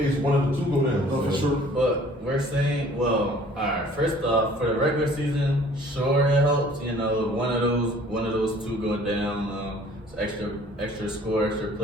one of the two go down. For sure. But we're saying, well, all right. First off, for the regular season, sure it helps. You know, one of those two go down. Extra score, extra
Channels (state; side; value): normal; both; correlation 0.53